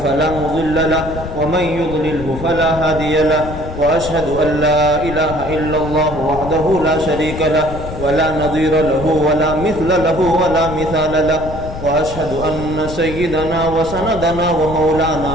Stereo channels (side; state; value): left; noise; rumble, 9 dB below the sound